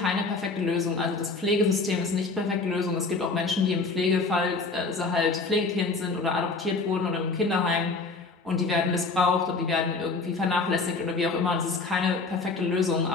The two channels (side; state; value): right; quieter; 3.9 dB